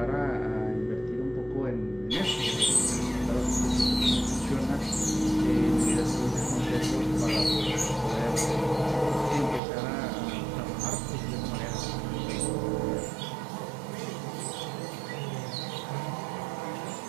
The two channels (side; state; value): left; drops out; at 9.6 s